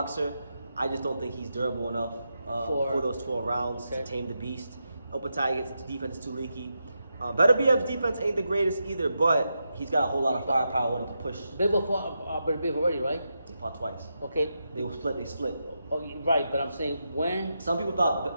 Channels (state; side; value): inverted; both; correlation -0.86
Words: I just don't think he's durable enough for those 12 rounds to tame the beast. Opetaia's defense is too leaky. Beterbiev's defense ain't the greatest either, but he's got a whole lot of firepower with him to push. Bivol fought Beterbiev already, right? They fought twice. Okay. They split. Oh, right, but I'm saying when. Some people